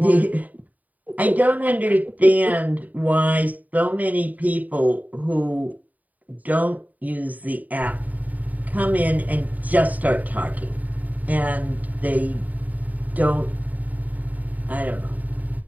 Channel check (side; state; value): left; late; 0.076 ms